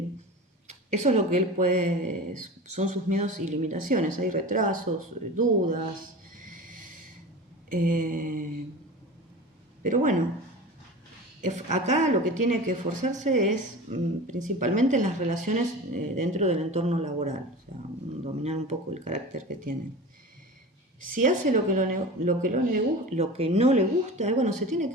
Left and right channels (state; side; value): normal; both; correlation 0.33